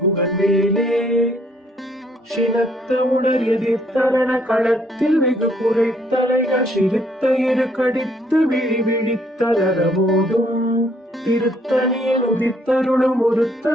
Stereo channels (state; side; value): normal; both; correlation 0.66